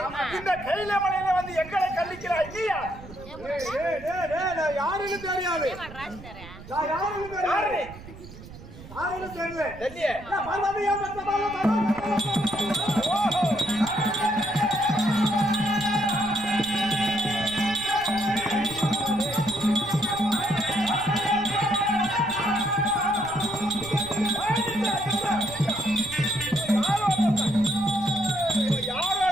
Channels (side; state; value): right; noise; rumble, 16 dB below the sound